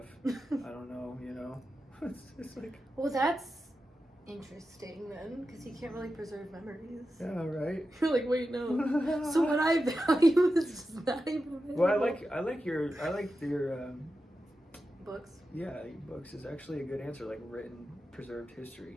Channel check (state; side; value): normal; both; correlation 0.91